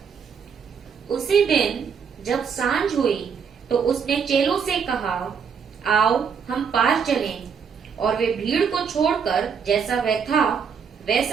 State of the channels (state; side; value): quieter; left; 6.6 dB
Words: उसी दिन जब सांझ हुई तो उसने चेलों से कहा, आओ हम पार चलें। और वे भीड़ को छोड़कर जैसा वह था